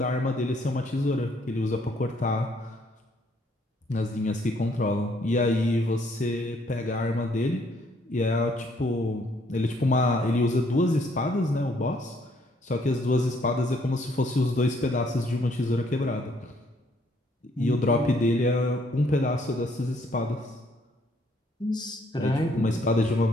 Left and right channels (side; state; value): both; normal; correlation 0.66